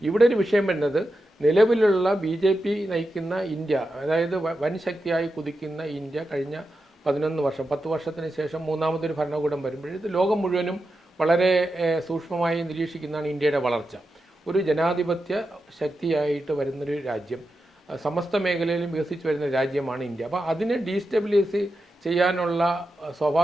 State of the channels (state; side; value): normal; both; correlation 0.89